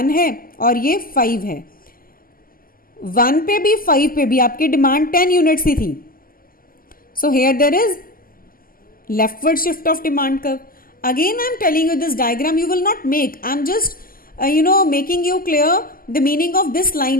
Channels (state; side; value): late; right; 0.42 ms